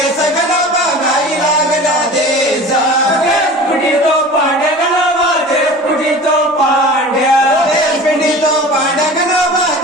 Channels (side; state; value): both; normal; correlation 0.38